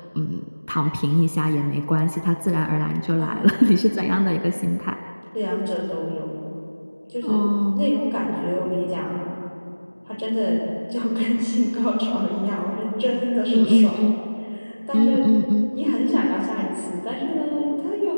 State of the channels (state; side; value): inverted; both; correlation -1.00